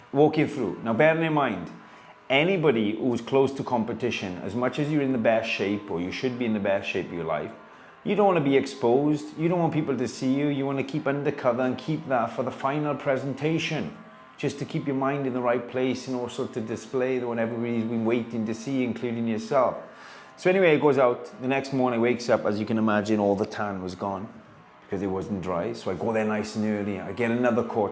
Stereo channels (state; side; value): identical; both; correlation 1.00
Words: walking through. Now, bearing in mind, anybody who's close to competition, as much as you're in the best shape, or you should be in the best shape of your life, you don't want to be exposed. You don't want people to see you. You want to keep undercover and keep that for the final presentation, just to keep your mind in the right place and also to display what everybody's been waiting to see, including yourself. So anyway, it goes out. The next morning, wakes up, as you can imagine, all the tan was gone because it wasn't dry. So I go there nice and early. I get another